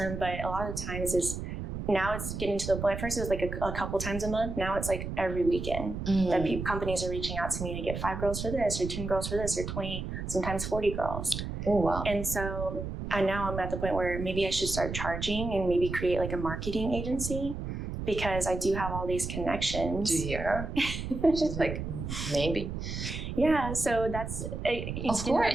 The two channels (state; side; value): noise; right; rumble, 6 dB below the sound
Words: but a lot of the times now it's getting to the point. First it was like a couple times a month. Now it's like every weekend that companies are reaching out to me to get 5 girls for this, or 10 girls for this, or 20, sometimes 40 girls. Oh, wow. And so now I'm at the point where maybe I should start charging and maybe create like a marketing agency, because I do have all these connections. Do you hear her? She's like, maybe. Yeah, so that's of